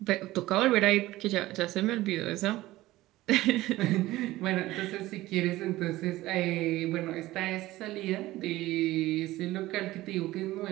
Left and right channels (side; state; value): left; quieter; 17.2 dB